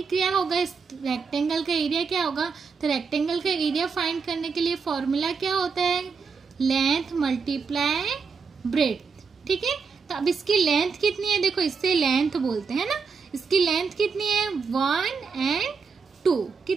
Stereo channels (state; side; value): quieter; left; 5.4 dB